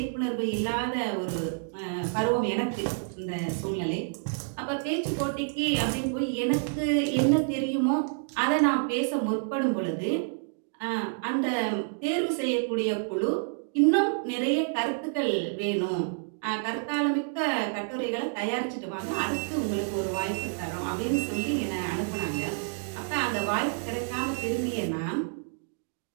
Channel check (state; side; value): silent; left; digital silence